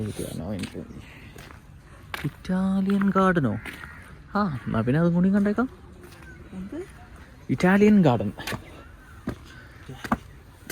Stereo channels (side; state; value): both; identical; correlation 1.00